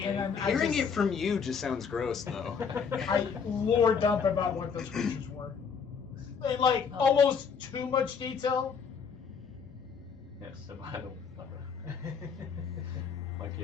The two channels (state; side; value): quieter; right; 6.2 dB